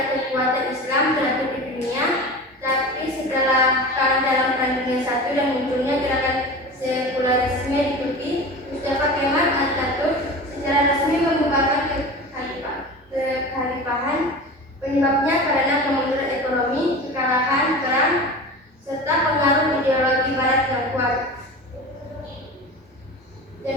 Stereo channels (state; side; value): normal; both; correlation 0.33